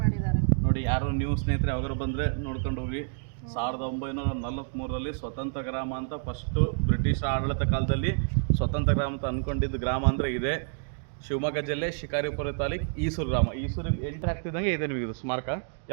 ಮಾಡಿದ್ದಾರೆ ನೋಡಿ. ಯಾರು ನೀವು ಸ್ನೇಹಿತರೆ ಯಾವಾಗಾರು ಬಂದರೆ ನೋಡ್ಕೊಂಡು ಹೋಗಿ. 1943ರಲ್ಲಿ ಸ್ವತಂತ್ರ ಗ್ರಾಮ ಅಂತ ಫಸ್ಟು ಬ್ರಿಟಿಷ್ ಆಡಳಿತ ಕಾಲದಲ್ಲಿ ಸ್ವತಂತ್ರ ಗ್ರಾಮ ಅಂತ ಅಂದ್ಕೊಂಡಿದ್ದು ಗ್ರಾಮ ಅಂದರೆ ಇದೆ. ಶಿವಮೊಗ್ಗ ಜಿಲ್ಲೆ ಶಿಕಾರಿಪುರ ತಾಲೂಕು ಈಸೂರು ಗ್ರಾಮ. ಈಸೂರಿಗೆ ಎಂಟ್ರಿ ಆಗ್ತಿದ್ದಂಗೆ ಇದೆ ನಿಮಗೆ ಇದು ಸ್ಮಾರಕ.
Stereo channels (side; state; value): left; silent; 59 dB below the other